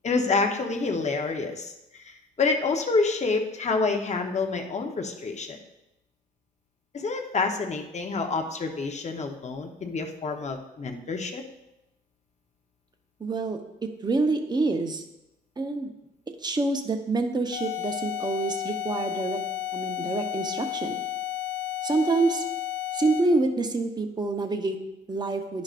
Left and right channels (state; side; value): normal; both; correlation 0.55